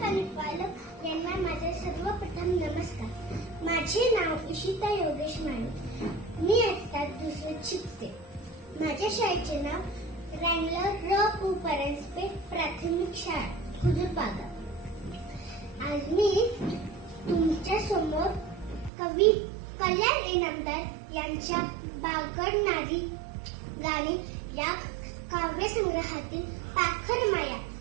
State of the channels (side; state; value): left; drops out; at 18.9 s